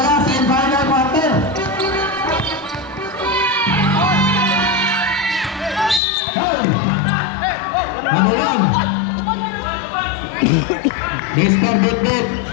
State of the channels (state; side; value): drops out; right; at 6.0 s